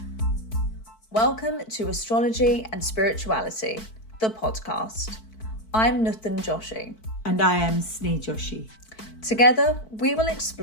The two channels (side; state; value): right; late; 4.5 ms